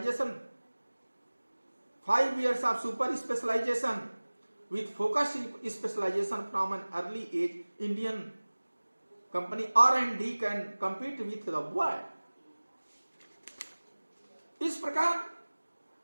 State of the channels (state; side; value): inverted; both; correlation -1.00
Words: 5 years of super specialization with focused specialization from an early age. Indian company R&D can compete with the world. इस प्रकार